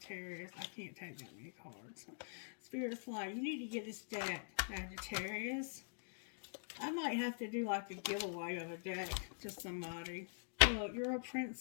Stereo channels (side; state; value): right; silent; digital silence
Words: I can't take that many cards. Spirit's like, you need to get this deck, Sagittarius. I might have to do like a giveaway of a deck to somebody. Look, you're a